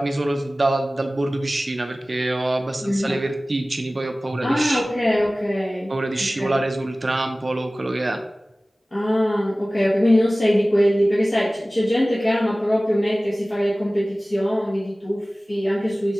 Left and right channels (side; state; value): both; normal; correlation 0.97